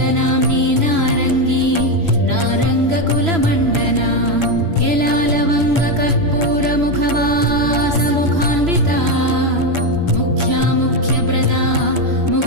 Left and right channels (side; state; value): left; late; 3.0 ms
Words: नारङ्गी नारङ्गकुलमण्डना यलालवङ्गकर्पूरमुखवासमुखान्विता मुख्या मुख्यप्रदा